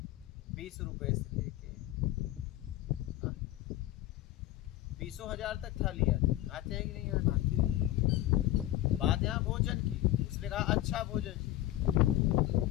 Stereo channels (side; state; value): right; quieter; 15.0 dB